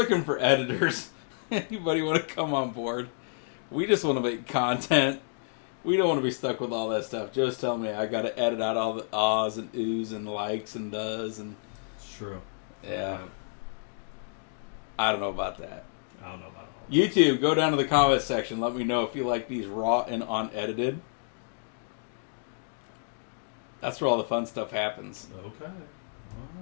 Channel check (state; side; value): silent; right; digital silence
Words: for editors. Anybody want to come on board? We just want to make content. We don't want to be stuck with all that stuff. Just tell me I got to edit out all the ahs and oohs and likes and does and. It's true. Yeah. I don't know about that. I don't know about all that. YouTube, go down to the comment section. Let me know if you like these raw and unedited. That's where all the fun stuff happens. Okay.